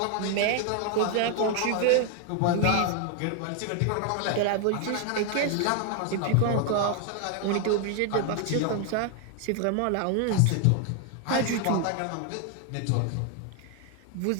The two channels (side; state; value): both; different; correlation 0.00